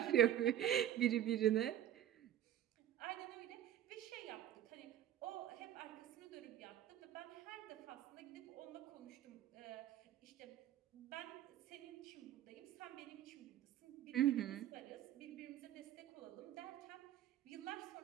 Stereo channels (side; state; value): left; quieter; 11.7 dB